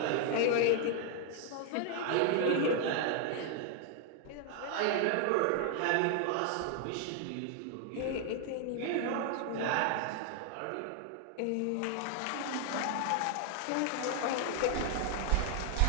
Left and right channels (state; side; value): different; both; correlation 0.00